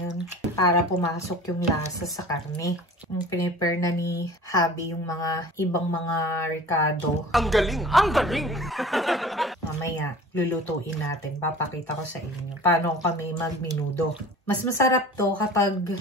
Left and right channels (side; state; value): both; normal; correlation 0.42